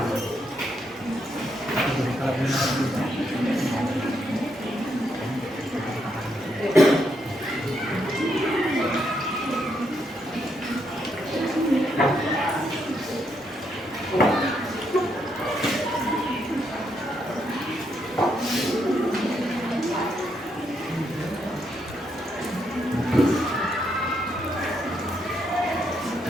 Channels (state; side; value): normal; both; correlation 0.77